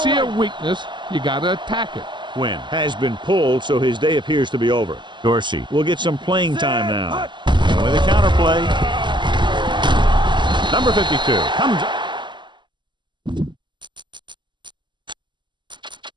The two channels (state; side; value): late; left; 0.22 ms